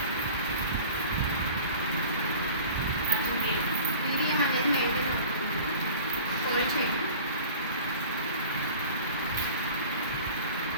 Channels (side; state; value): both; inverted; correlation -0.42